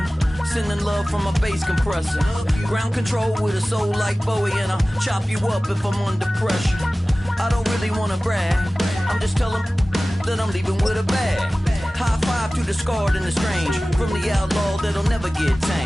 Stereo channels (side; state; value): both; normal; correlation 0.97